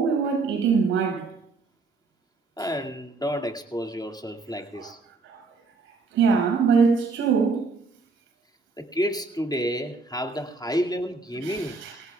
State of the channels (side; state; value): left; quieter; 4.0 dB